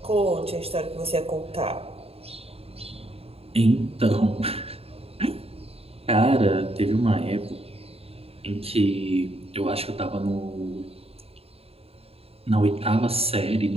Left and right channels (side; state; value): left; late; 0.28 ms